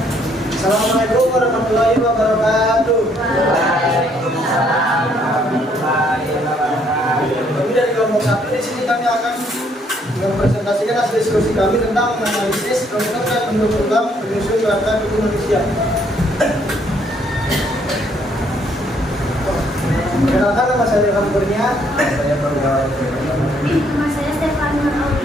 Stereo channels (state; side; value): normal; both; correlation 0.67